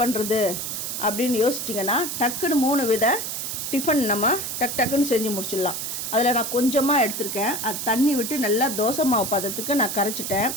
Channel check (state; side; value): noise; right; hiss, 4 dB below the sound